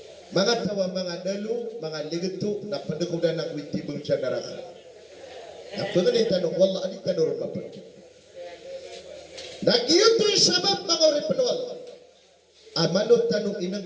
Mga tawa mga dalo, mga ligato, napadagkudan ng witibong siya naraka. Napagan tanong, wala alit ka naroon mapagyan. Nagyuto yung sabab mga oripanual. Malot tanong inang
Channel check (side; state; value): both; identical; correlation 1.00